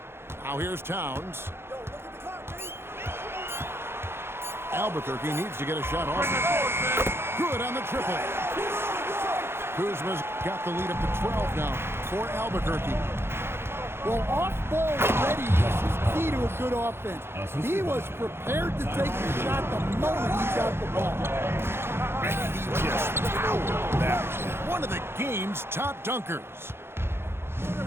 Now here's Towns. Albuquerque needs to get a shot off. Good on the triple. Kuzma's got the lead up to 12 now for Albuquerque. Well, off-ball readiness is key to a good offense. He was prepared to take the shot the moment he got the ball. And he just powered that. One of the game's top dunkers.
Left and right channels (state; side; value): late; left; 0.12 ms